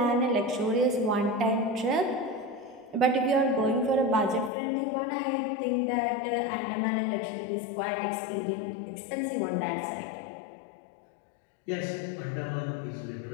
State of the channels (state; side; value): drops out; right; at 4.5 s